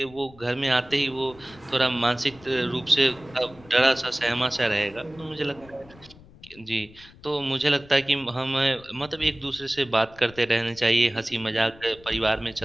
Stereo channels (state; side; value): noise; left; rumble, 23 dB below the sound